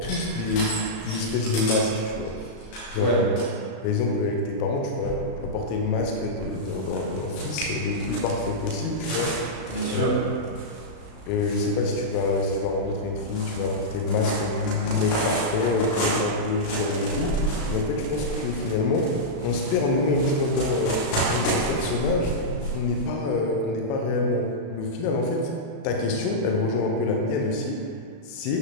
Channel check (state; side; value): late; right; 36 ms